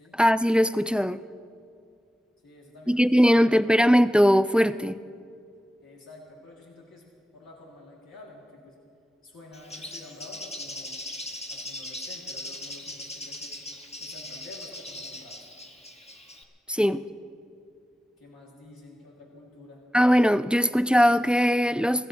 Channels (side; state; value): both; normal; correlation 0.93